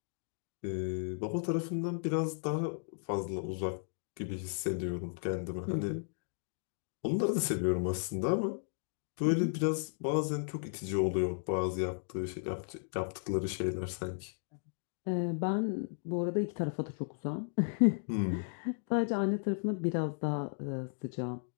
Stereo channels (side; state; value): right; silent; digital silence